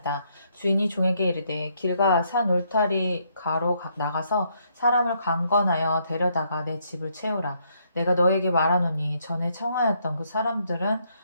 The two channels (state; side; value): inverted; both; correlation -0.72